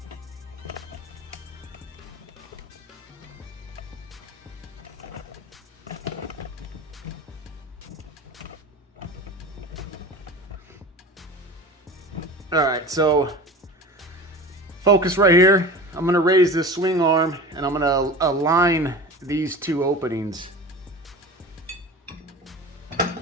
All right, so focus right here. I'm gonna raise this swing arm and I'm gonna align these two openings.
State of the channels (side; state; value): both; normal; correlation 0.35